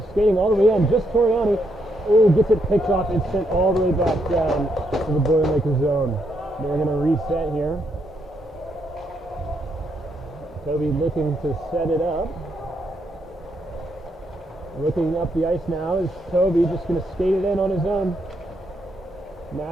skating all the way in, just Toriani. Oh, gets it picked off and sent all the way back down to the Boilermaker zone. They're going to reset here. Toby looking to set it up. Looking up the ice now is Toby, just going to skate it in on his own.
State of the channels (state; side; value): normal; both; correlation 0.77